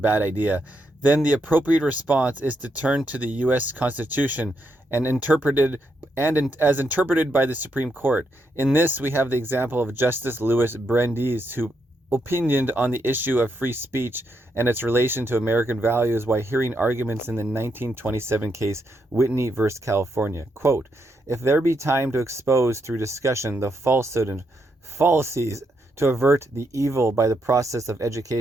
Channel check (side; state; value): both; normal; correlation 0.80